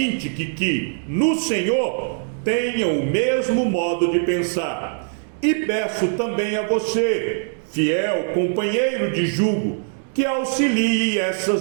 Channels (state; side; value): silent; left; 64 dB below the other